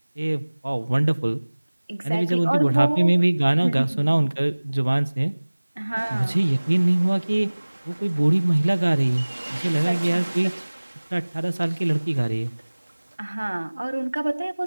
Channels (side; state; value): both; inverted; correlation -1.00